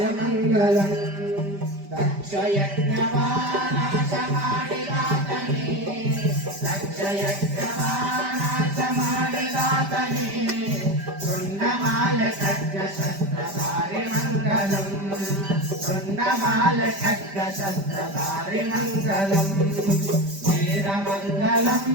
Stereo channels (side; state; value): left; late; 5.1 ms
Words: దక్షయజ్ఞవానాశమాడిదాతని దక్షయజ్ఞవానాశమాడిదాతని కుండమాల ఖడ్గ శస్త్రధారి మంగళం కుండమాల ఖడ్గ శస్త్రధారి మంగళం వీరమంగళం